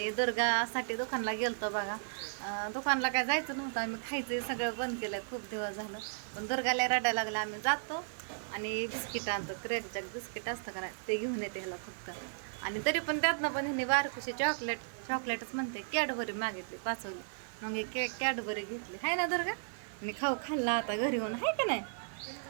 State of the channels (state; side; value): silent; left; digital silence